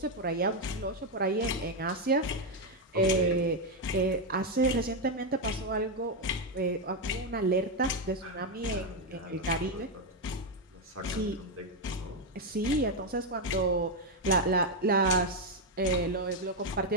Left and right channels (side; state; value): both; normal; correlation 0.04